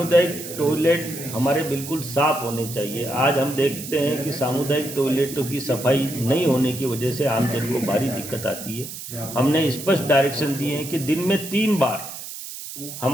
टॉयलेट हमारे बिल्कुल साफ होने चाहिए। आज हम देखते हैं कि सामुदायिक टॉयलेटों की सफाई नहीं होने की वजह से आमजन को भारी दिक्कत आती है। हमने स्पष्ट डायरेक्शन दिए हैं कि दिन में 3 बार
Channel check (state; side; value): noise; right; hiss, 10 dB below the sound